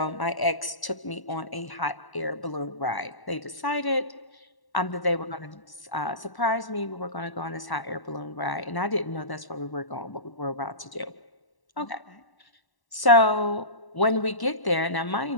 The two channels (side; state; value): right; late; 1.1 ms